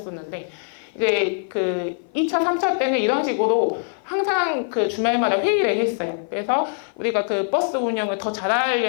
이제 그 2차, 3차 때는 이런 식으로 항상 그 주말마다 회의를 했어요. 그래서 우리가 그 버스 운영을 더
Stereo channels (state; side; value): silent; right; 56 dB below the other